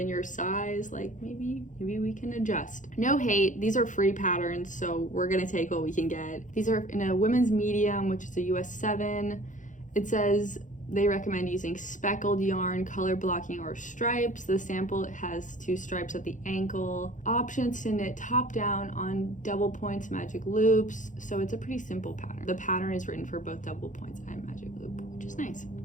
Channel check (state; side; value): late; right; 0.37 ms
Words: your size, like maybe we can adjust. No hate, these are free patterns, so we're gonna take what we can get. These are in a women's medium, which is a US 7. It says they recommend using speckled yarn, color blocking, or stripes. The sample has 2 stripes at the ankle. Options to knit top down on double points magic loops. So it's a pretty simple pattern. The pattern is written for both double points and magic loop, which is nice.